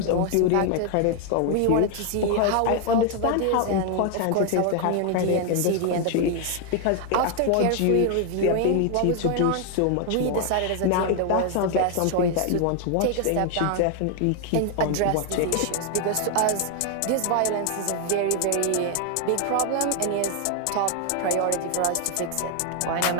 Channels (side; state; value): both; different; correlation 0.00